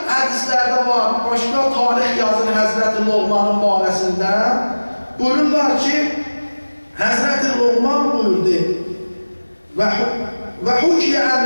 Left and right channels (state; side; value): inverted; both; correlation -1.00